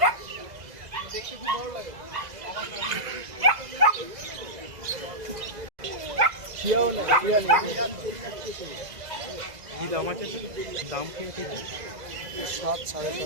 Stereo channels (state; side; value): late; left; 2.0 ms